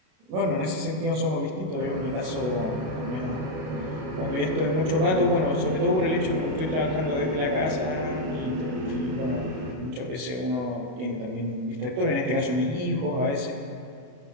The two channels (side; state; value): left; late; 32 ms